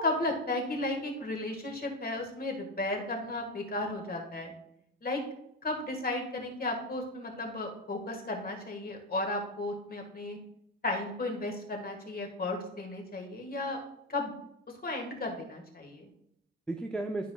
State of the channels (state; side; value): normal; both; correlation 0.15